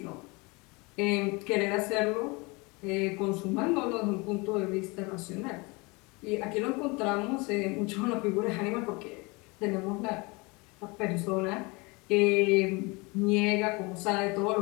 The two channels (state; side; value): quieter; right; 26.8 dB